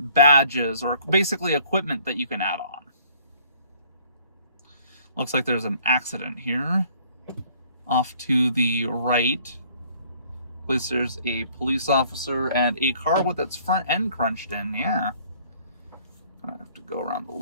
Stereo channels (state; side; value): inverted; both; correlation -0.58